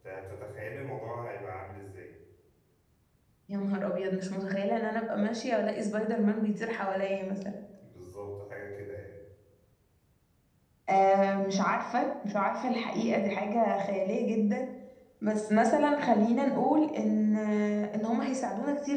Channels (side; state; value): both; identical; correlation 1.00